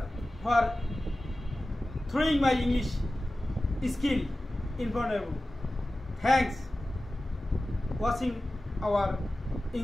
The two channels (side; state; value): both; normal; correlation 0.95